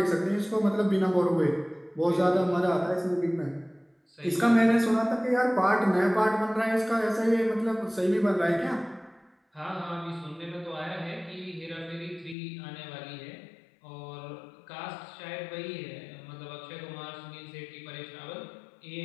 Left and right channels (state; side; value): drops out; right; at 12.4 s